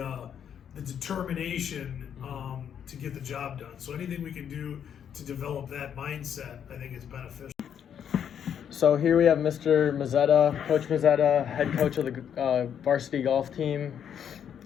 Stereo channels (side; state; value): right; quieter; 8.6 dB